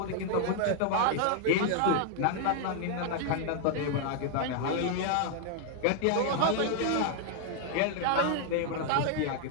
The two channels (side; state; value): both; different; correlation 0.00